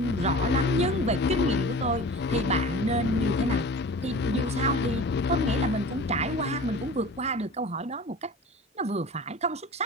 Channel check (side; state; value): both; normal; correlation 0.38